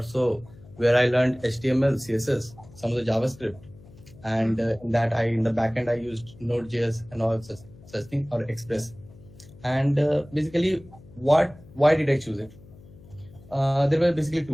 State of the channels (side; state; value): left; noise; hum, 22 dB below the sound